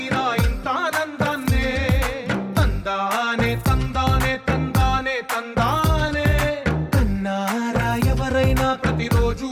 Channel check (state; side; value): identical; both; correlation 1.00